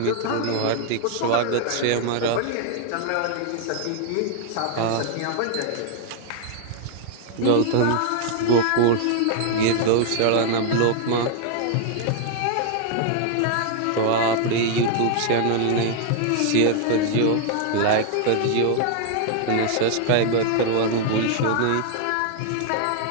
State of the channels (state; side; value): different; both; correlation 0.00